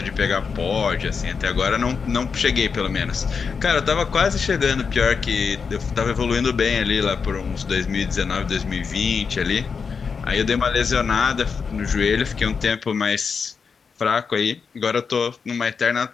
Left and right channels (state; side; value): quieter; right; 5.6 dB